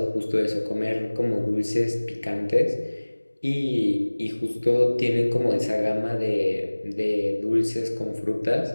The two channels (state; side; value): inverted; both; correlation -1.00